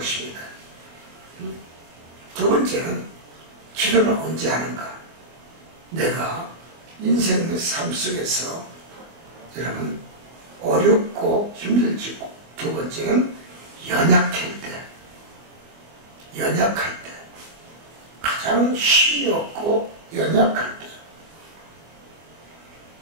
두 번째는 기도는 언제 하는가? 내가 인생의 삶 속에서 여러분 어렵고 힘들지고 두 번째는 연약할 때 가장 힘이 없고 연약할 때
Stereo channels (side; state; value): left; late; 24 ms